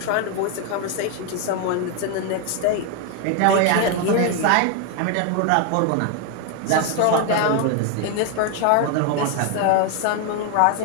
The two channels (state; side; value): different; both; correlation 0.01